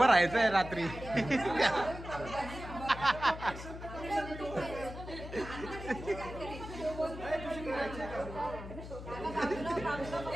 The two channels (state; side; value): noise; left; hum, 11 dB below the sound